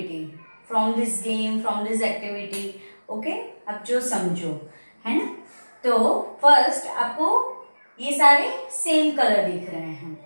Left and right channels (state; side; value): inverted; both; correlation -1.00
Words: from this game, from this activity. Okay. अब जो समझो है ना. तो first आपको ये सारे सेम कलर दिख रहे हैं